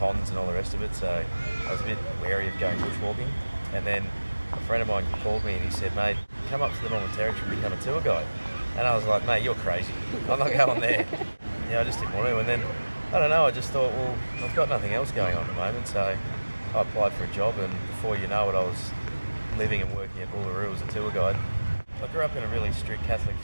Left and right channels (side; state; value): both; inverted; correlation -1.00